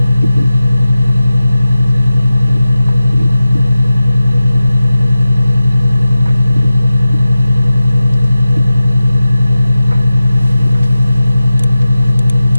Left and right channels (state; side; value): inverted; both; correlation -0.95